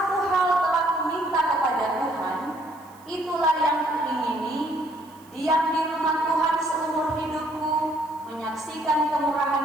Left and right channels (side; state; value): right; noise; hiss, 28 dB below the sound